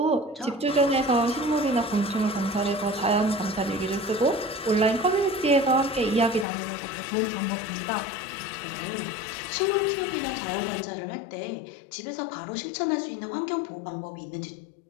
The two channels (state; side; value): drops out; right; at 6.5 s